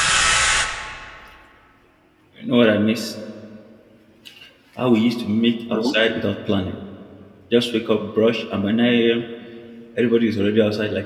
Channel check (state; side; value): identical; both; correlation 1.00